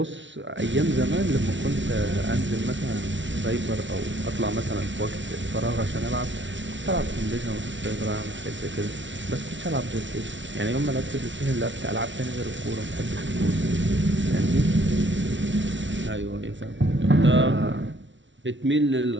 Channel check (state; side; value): late; left; 0.55 ms